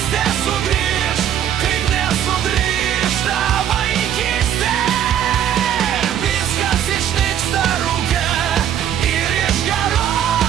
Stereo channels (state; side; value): quieter; left; 10.1 dB